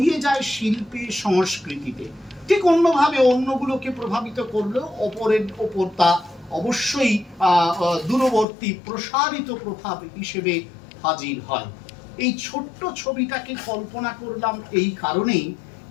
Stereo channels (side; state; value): right; drops out; at 8.5 s